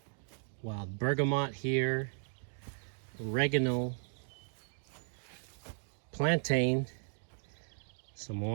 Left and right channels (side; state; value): left; silent; digital silence